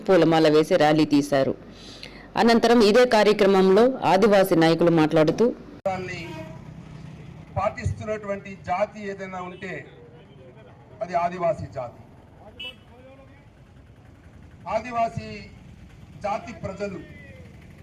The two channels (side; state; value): both; identical; correlation 1.00